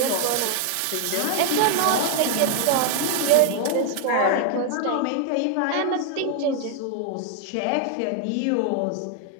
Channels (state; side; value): different; both; correlation 0.00